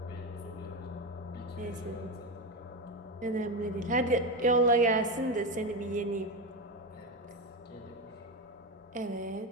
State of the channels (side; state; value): both; normal; correlation 0.15